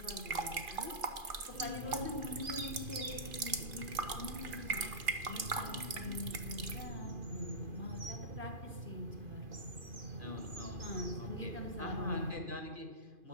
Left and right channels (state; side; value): late; left; 2.5 ms